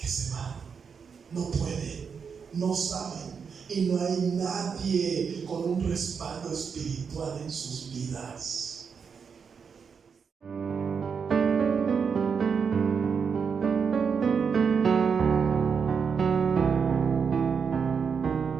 se van. No pueden, no saben. Y no hay nadie con un respaldo espiritual en sus vidas.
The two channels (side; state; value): left; quieter; 6.2 dB